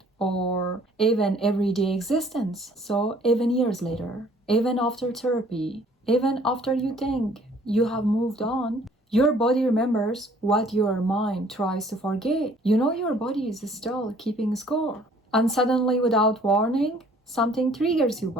or even everyday existence. So even years later, even after therapy, even after you think you have moved on, your body remembers what your mind tries to forget. You know your body is still keeping score. And suddenly, without warning, something triggers you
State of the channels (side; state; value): both; normal; correlation 0.57